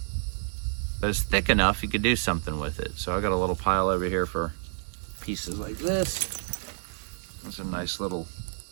But it's thick enough you could do something with it. So I got a little pile over here for pieces like this. That's a nice little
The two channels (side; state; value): left; silent; digital silence